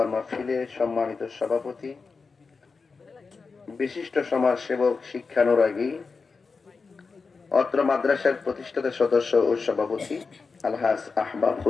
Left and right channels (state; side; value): quieter; right; 4.6 dB